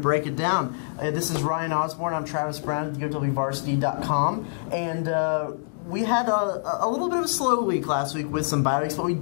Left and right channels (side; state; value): right; silent; digital silence